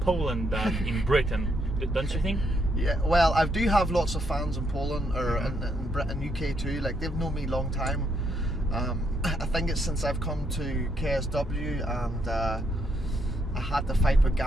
than in Britain, don't you think? Yeah, well, I do have lots of fans in Poland or in Britain, UK too. Like they've known me a long time. I think it's since I've come to KSW and I had the fight with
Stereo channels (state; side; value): normal; both; correlation 0.76